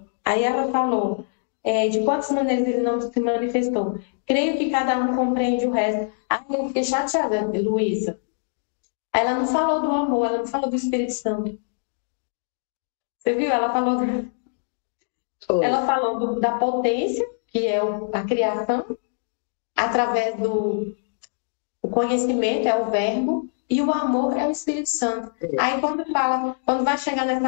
Aí ela falou, de quantas maneiras ele não se manifestou. Creio que cada um compreende o resto. Aí eu fiquei chateada, Luísa. Ela não falou do amor, ela não falou do Espírito Santo. Você viu? Ela falou da potência, que é a criação, através do conhecimento, é o verbo, e o amor é o Espírito Santo. Aí quando vai chegar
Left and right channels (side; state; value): right; silent; digital silence